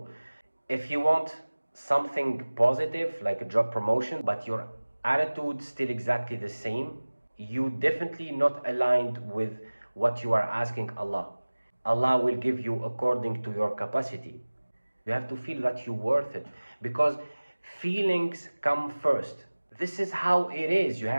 If you want something positive, like a job promotion, but your attitude still exactly the same, you definitely not aligned with what you are asking Allah. Allah will give you according to your capacity. You have to feel that you're worth it, because feelings come first. This is how it is. You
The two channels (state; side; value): inverted; both; correlation -1.00